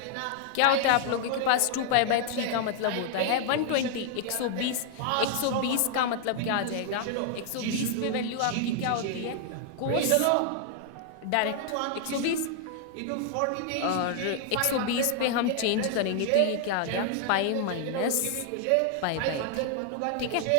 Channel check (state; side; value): different; both; correlation 0.00